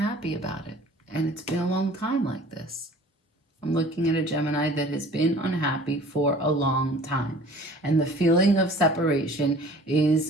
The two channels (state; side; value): normal; both; correlation 0.48